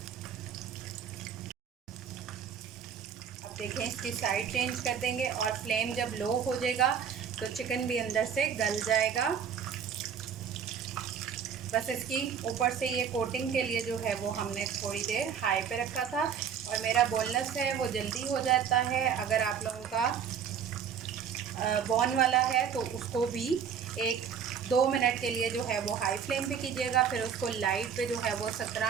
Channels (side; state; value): left; quieter; 7.5 dB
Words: देखें, इसकी साइड चेंज कर देंगे और फ्लेम जब लो हो जाएगा तो चिकन भी अंदर से गल जाएगा। बस इसकी ऊपर से ये कोटिंग के लिए जो है वो हमने थोड़ी देर हाई पे रखा था। और मेरा बोनलेस है वो जल्दी हो जाता है। अगर आप लोगों का बॉन वाला है तो उसको भी 1-2 मिनट के लिए जो है वो हाई फ्लेम पे कीजिएगा। फिर उसको लाइट पे जो है वो